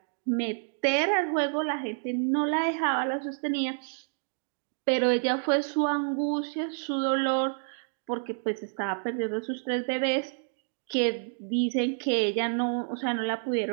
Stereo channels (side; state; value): left; silent; digital silence